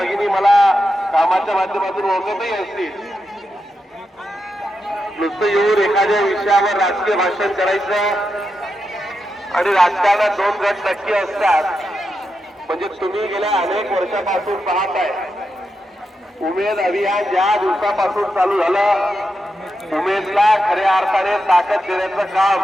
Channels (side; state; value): both; normal; correlation 0.86